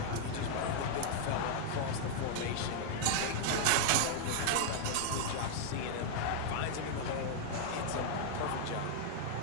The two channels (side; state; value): both; different; correlation -0.01